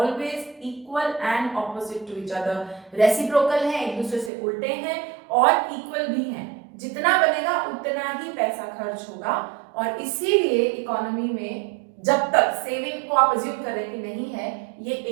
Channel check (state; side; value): drops out; left; at 4.3 s